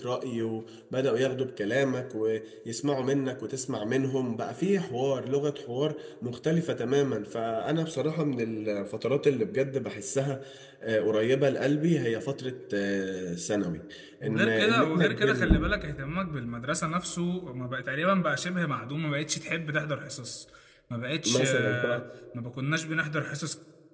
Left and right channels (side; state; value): both; identical; correlation 1.00